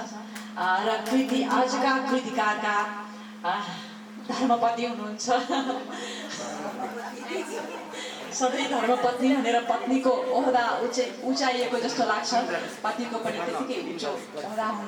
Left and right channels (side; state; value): both; identical; correlation 1.00